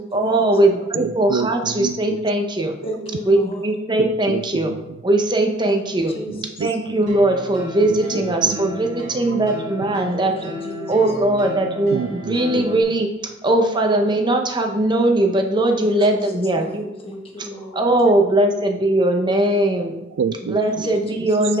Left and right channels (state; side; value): normal; both; correlation 0.55